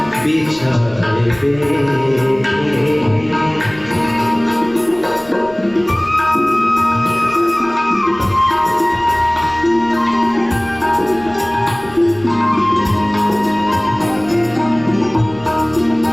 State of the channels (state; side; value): noise; left; rumble, 23 dB below the sound